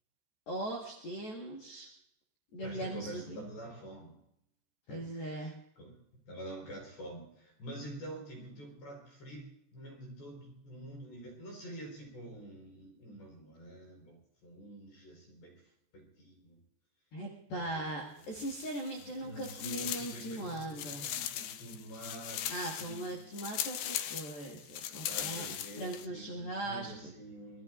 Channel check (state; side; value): late; right; 14 ms